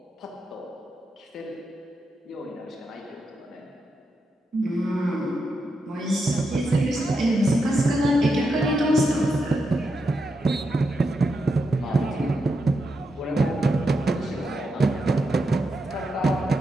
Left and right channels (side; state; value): both; normal; correlation 0.85